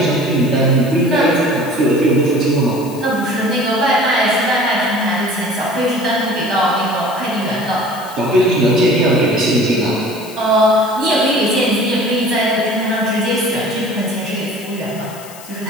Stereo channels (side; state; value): left; noise; hiss, 18 dB below the sound